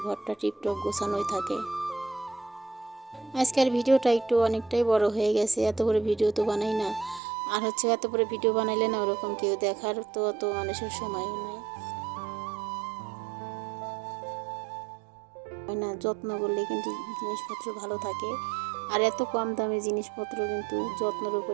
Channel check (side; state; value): left; drops out; at 7.2 s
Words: ঘরটা টিপটপ গোছানোই থাকে। আজকের ভিডিওটা একটু অনেকটাই বড় হয়ে গেছে, এত বড় ভিডিও তো বানাই না। আর এত বড় ভিডিও বানাইলে না ওরকম কেউ দেখার তো অত মানুষের সময়ও নাই না। যত্ন করলে কিন্তু জিনিসপত্র ভালো থাকে। আর এত কম দামে জিনিসপত্র কিন্তু যত্নের